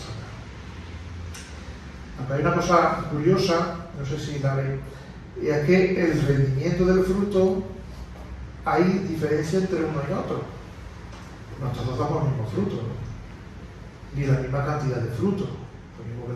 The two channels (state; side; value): identical; both; correlation 1.00